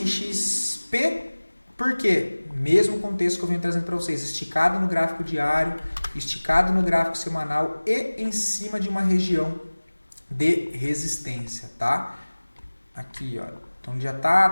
XP, por quê? Mesmo contexto que eu venho trazendo para vocês, esticado no gráfico diário, esticado no gráfico semanal e em cima de uma região de resistência, tá? Aqui, ó. Então, já está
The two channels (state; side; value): inverted; both; correlation -1.00